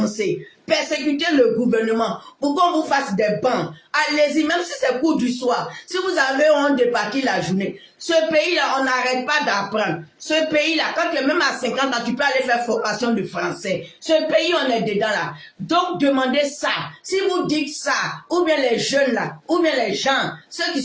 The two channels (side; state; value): both; identical; correlation 1.00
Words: Persécutez le gouvernement pour qu'on vous fasse des bancs. Allez-y, même si c'est cours du soir. Si vous avez honte de partir la journée. Ce pays-là, on n'arrête pas d'apprendre. Ce pays-là, quand tu es même à 50 ans, tu peux aller faire formation de français. Ce pays, on est dedans là. Donc, demandez ça. Si vous dites ça, ou bien les jeunes là, ou bien les gens, ceux qui